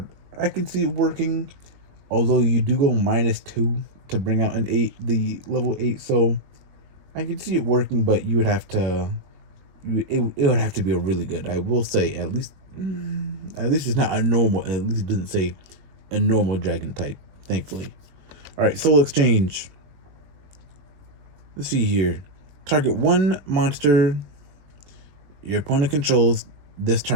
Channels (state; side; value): late; left; 21 ms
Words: I can see it working, although you do go -2 to bring out an 8, the level 8. So I can see it working, but you would have to. It would have to be a really good. I will say at least it's not a normal. At least it doesn't say a normal dragon type. Thankfully. All right, Soul Exchange. Let's see here. Target 1 monster your opponent controls this